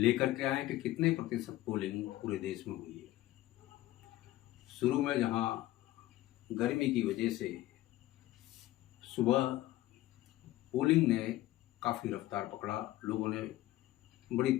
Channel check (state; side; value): quieter; right; 16.0 dB